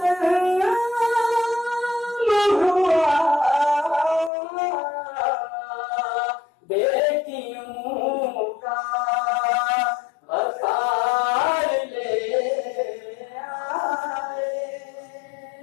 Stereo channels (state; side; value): drops out; right; at 4.3 s